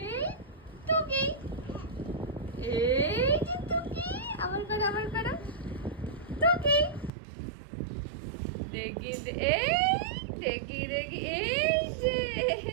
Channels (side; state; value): left; drops out; at 7.1 s